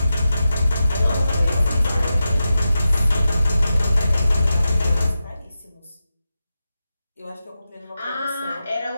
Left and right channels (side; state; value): both; inverted; correlation -0.91